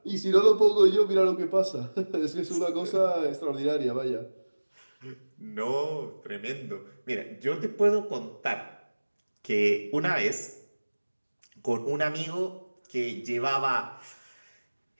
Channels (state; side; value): inverted; both; correlation -1.00